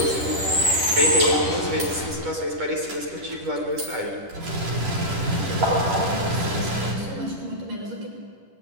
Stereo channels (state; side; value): late; left; 10 ms